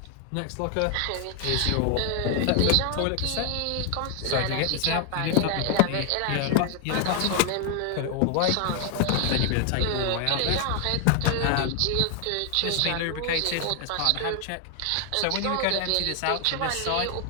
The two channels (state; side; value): different; both; correlation 0.00